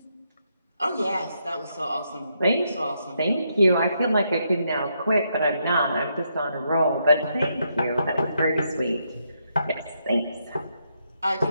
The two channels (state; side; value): inverted; both; correlation -0.78